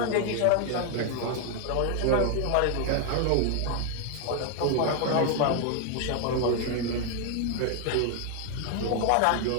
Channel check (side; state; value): both; different; correlation 0.00